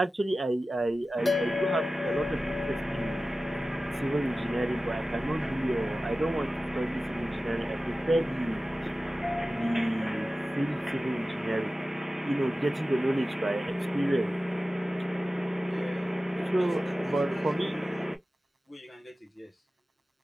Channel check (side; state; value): both; normal; correlation 0.95